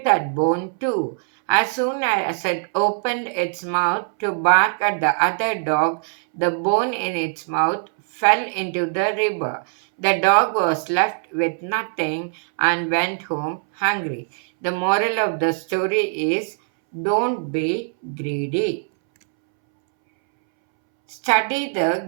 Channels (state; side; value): silent; left; 64 dB below the other